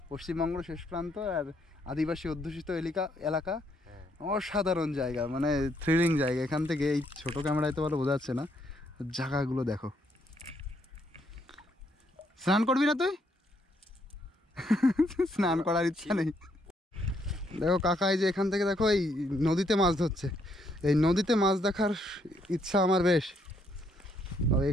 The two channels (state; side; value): normal; both; correlation 0.72